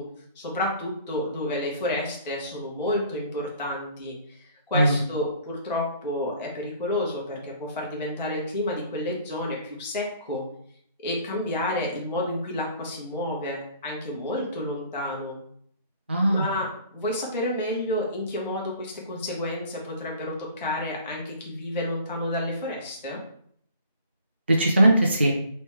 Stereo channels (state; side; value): inverted; both; correlation -0.52